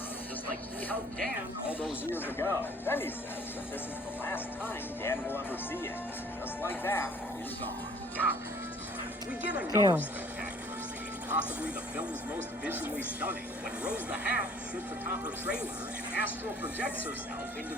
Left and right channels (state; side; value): normal; both; correlation 0.54